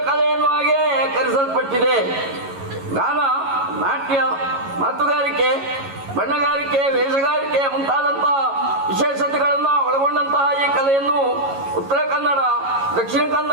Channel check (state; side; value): late; left; 11 ms